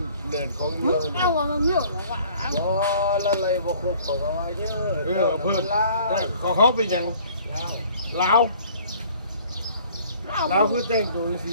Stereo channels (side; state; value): both; inverted; correlation -0.54